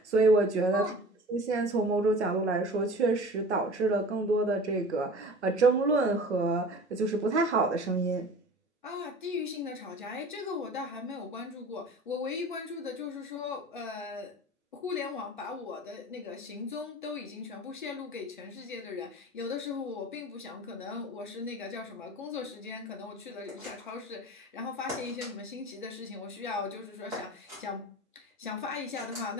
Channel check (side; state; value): both; normal; correlation 0.40